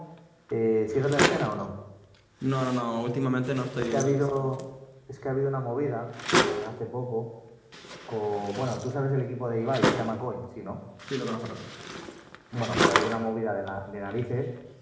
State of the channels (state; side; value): identical; both; correlation 1.00